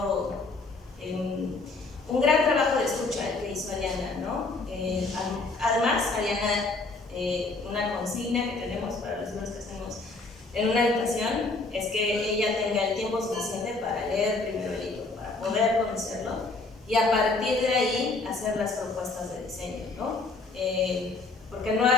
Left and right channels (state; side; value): quieter; right; 3.5 dB